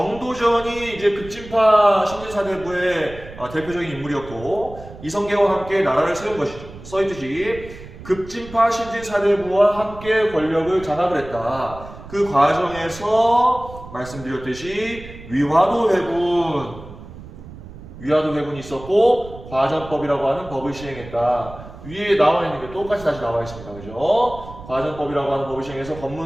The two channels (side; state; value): right; noise; rumble, 16 dB below the sound